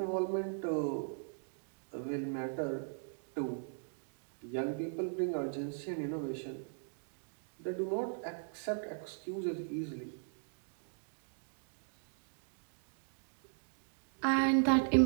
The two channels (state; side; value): silent; left; digital silence